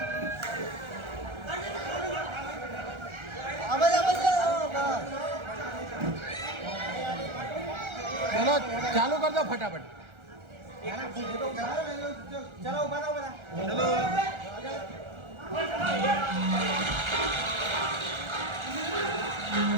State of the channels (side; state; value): left; late; 1.4 ms